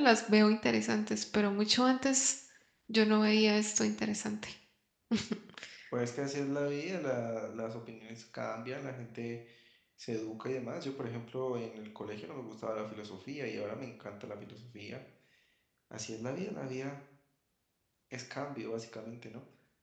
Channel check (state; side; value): identical; both; correlation 1.00